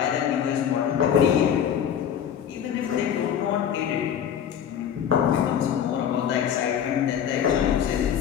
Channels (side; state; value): right; quieter; 9.0 dB